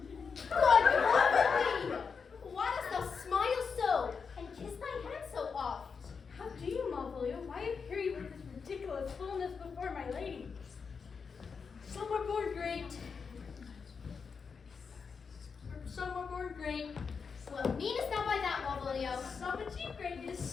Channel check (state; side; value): quieter; right; 5.6 dB